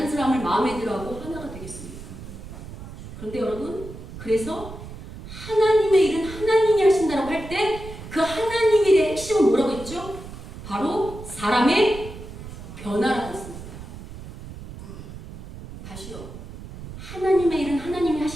사람을 마음에 들어하고 하나가 되겠습니까? 그런데 여러분, 그래서 하나님의 일은 하나님이 하신다고 할 때 그 하나님의 일의 핵심은 뭐라고 했죠? 바로 사람의 변화라고 했습니다. 다시요. 하나님의 일은 하나님이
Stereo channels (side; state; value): right; noise; rumble, 13 dB below the sound